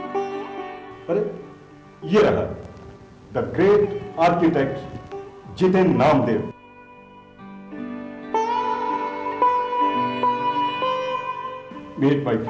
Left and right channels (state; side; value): identical; both; correlation 1.00